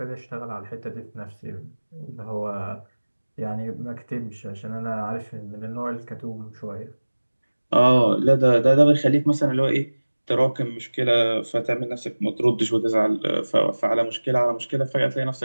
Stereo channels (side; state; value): both; inverted; correlation -1.00